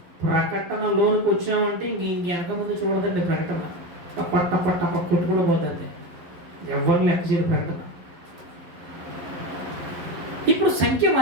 ప్రకటనలోనికి వచ్చామంటే ఇంక వెనక ముందు చూడదండి. ప్రకటన టప్ప కొట్టుకుని పోతుంది. ఎవరు లెక్క చేయరు ప్రకటన. ఇప్పుడు సంఖ్య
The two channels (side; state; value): left; late; 11 ms